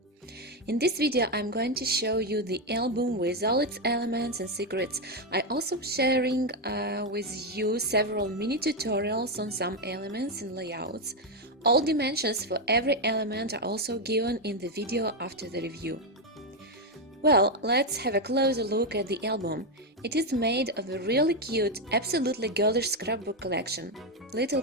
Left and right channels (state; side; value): normal; both; correlation 0.06